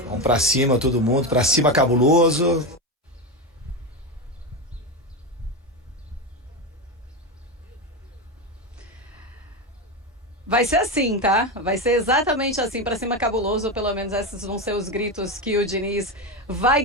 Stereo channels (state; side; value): normal; both; correlation 0.15